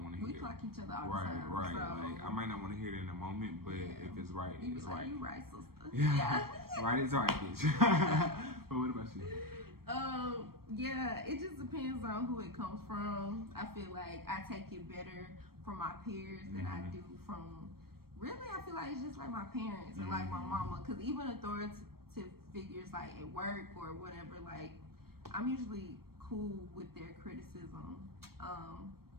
want to hear it. We clock each other all the time. Right. So. Like, I might not want to hear it in the moment, but if it's right, it's right. You right, sister. Yeah. Right is right, bitch. But what about you? Yeah, it just depends on who it comes from. I feel like I take it better from my peers than I do from. Really, I feel like it's just like my parents or like my mama, because even authoritative figures like at work or whatever, like I'm usually cool with their criticism.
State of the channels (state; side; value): late; left; 0.94 ms